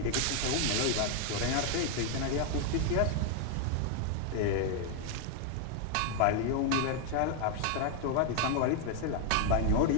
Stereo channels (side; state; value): both; different; correlation 0.00